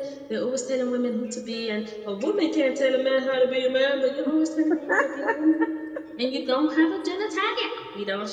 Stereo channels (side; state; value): both; identical; correlation 1.00